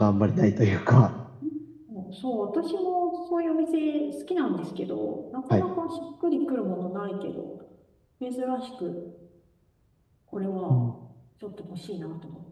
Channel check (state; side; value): identical; both; correlation 1.00